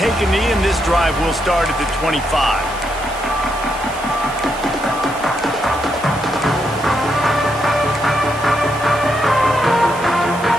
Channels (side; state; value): right; noise; hiss, 17 dB below the sound